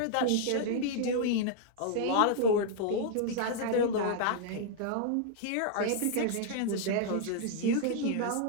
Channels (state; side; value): different; both; correlation -0.01